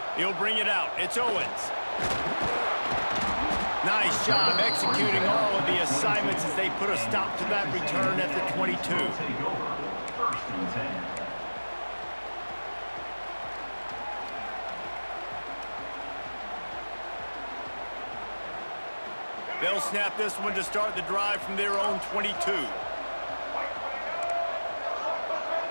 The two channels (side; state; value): both; inverted; correlation -1.00